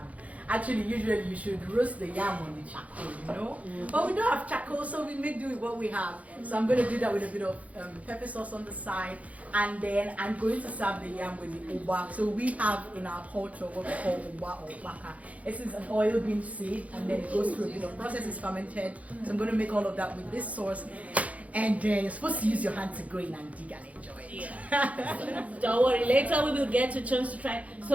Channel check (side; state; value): left; late; 0.068 ms